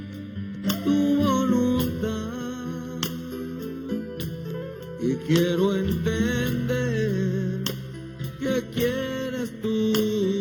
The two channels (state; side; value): identical; both; correlation 1.00